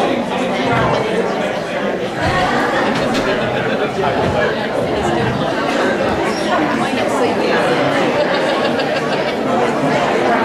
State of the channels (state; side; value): identical; both; correlation 1.00